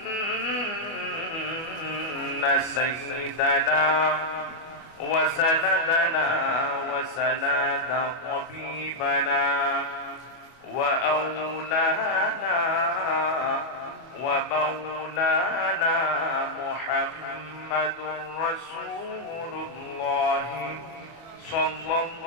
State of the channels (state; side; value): late; right; 24 ms